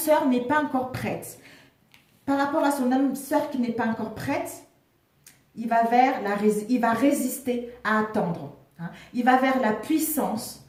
n'est pas encore prête. Par rapport à son âme sœur qui n'est pas encore prête, il va résister à attendre. Il va vers la puissance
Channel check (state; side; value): identical; both; correlation 1.00